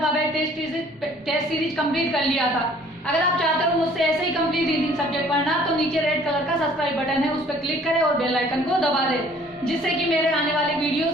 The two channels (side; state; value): both; normal; correlation 0.56